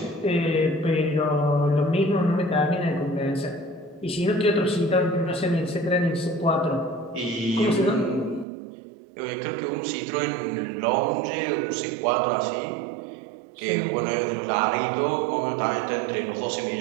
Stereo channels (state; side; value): drops out; left; at 8.5 s